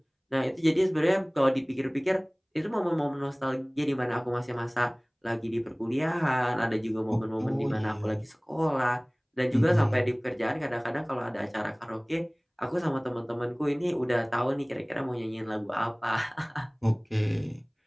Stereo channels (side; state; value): both; identical; correlation 1.00